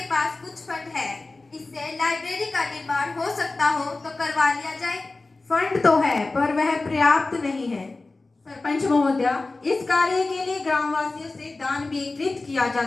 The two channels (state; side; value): quieter; right; 3.4 dB